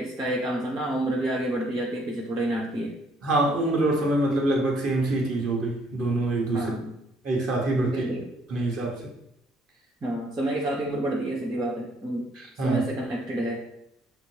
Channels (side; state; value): both; normal; correlation 0.66